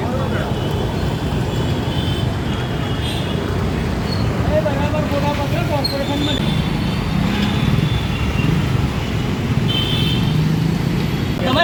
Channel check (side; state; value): both; identical; correlation 1.00